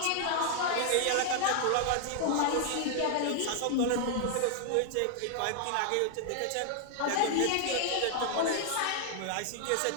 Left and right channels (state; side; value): different; both; correlation 0.00